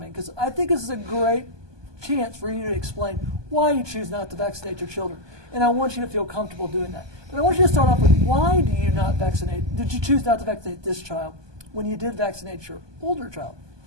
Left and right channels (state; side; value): late; left; 1.2 ms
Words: because I think this is a great chance for you to explain why you choose not to vaccinate your children. And I want you to feel comfortable doing that. But I want you to start off with, why do you not vaccinate? Did you choose not to vaccinate this child when you did vaccinate your older child?